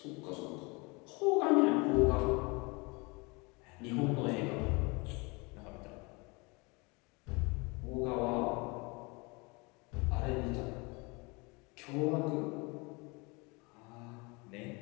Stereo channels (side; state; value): right; quieter; 27.8 dB